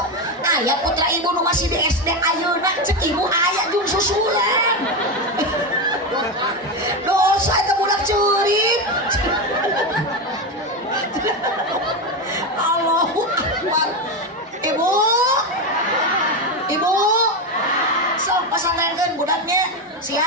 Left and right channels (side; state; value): both; normal; correlation 0.13